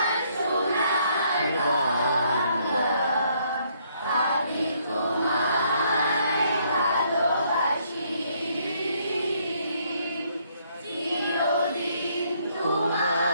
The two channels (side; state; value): both; inverted; correlation -0.69